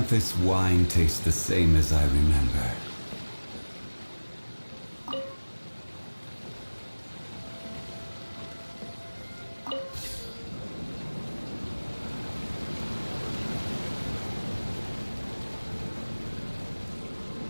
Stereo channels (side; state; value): both; inverted; correlation -1.00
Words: wine tastes the same as I remember.